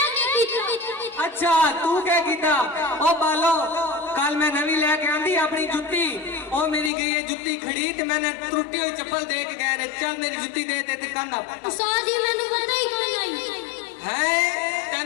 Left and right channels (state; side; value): drops out; right; at 6.9 s